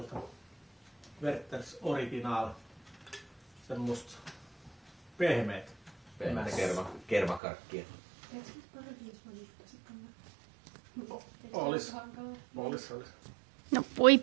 Werthers Original. Semmosta pehmeät. Pehmeät kermakarkkia. Olis. No voi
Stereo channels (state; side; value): drops out; left; at 7.4 s